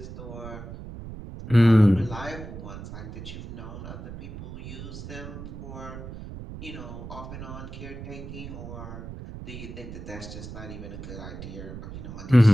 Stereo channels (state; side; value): noise; right; rumble, 10 dB below the sound